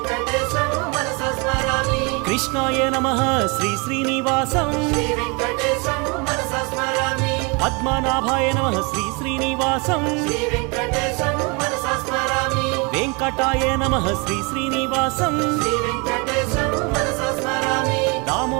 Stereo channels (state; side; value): quieter; left; 30.3 dB